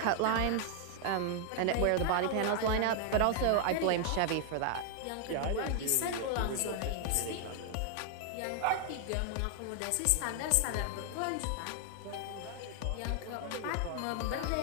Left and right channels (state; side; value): different; both; correlation 0.00